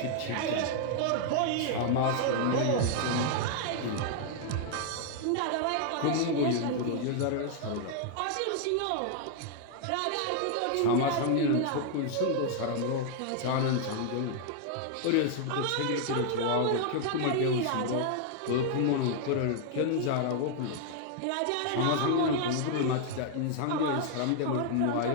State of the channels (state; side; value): different; both; correlation 0.00